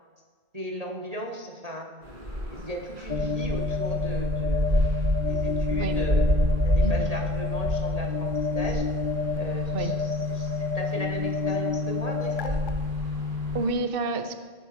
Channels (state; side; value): late; left; 1.8 ms